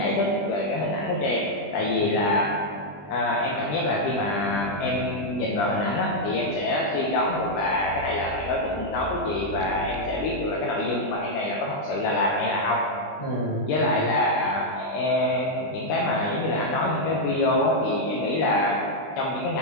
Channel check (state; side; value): late; right; 20 ms